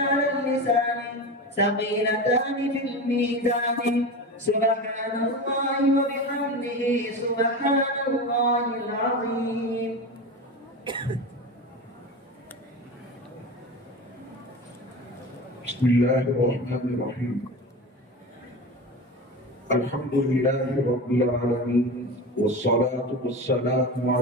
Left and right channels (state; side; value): normal; both; correlation 0.27